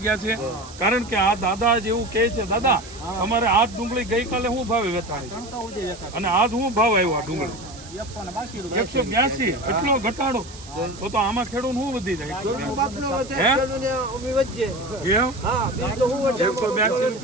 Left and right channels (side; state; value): right; noise; hiss, 17 dB below the sound